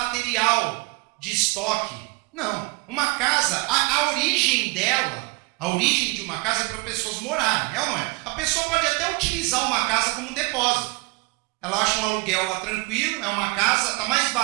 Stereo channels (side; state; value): left; quieter; 28.3 dB